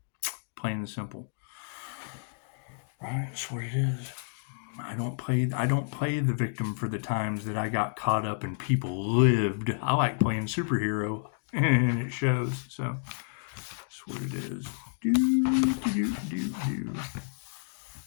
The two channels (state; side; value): silent; right; digital silence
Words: Plain and simple. Right? That's what it is. I don't play the victim for the times that I got caught up and people lived. I like playing superhero, and it shows. So that's what it is.